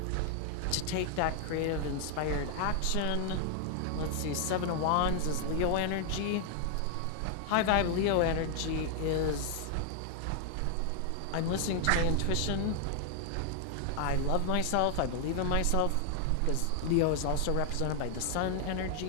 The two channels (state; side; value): different; both; correlation 0.00